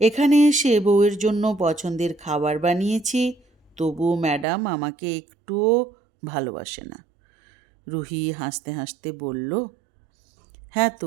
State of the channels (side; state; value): left; drops out; at 4.5 s